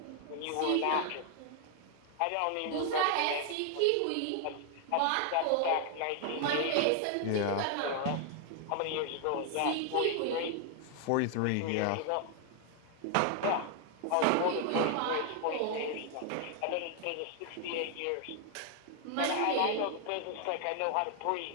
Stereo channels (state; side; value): different; both; correlation 0.00